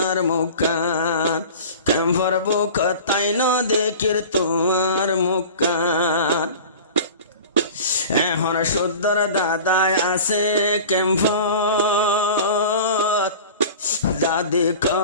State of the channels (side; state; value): both; inverted; correlation -0.38